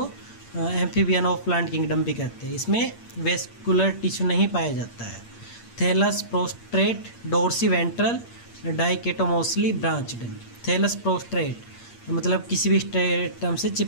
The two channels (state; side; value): late; right; 8.6 ms